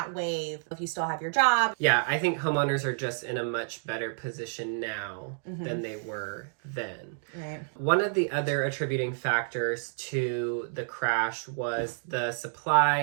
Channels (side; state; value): left; silent; digital silence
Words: wave, if you still have your job. Yeah, I think homeowners are just in a much better position now than they were then. Right. One of the other attributing factors to the crash was the